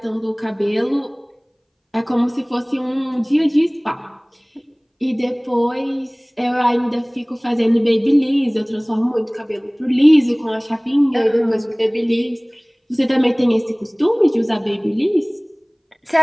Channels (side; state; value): both; identical; correlation 1.00